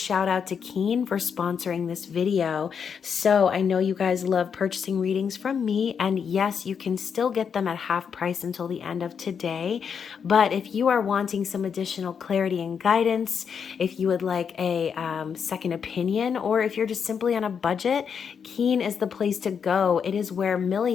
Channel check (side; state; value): right; quieter; 6.9 dB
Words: out to Keen for sponsoring this video. So, I know you guys love purchasing readings from me, and yes, you can still get them at half price until the end of today. But if you are wanting some additional clarity and guidance, if you would like a second opinion, or if you're just simply on a budget, Keen is the place to go. It is where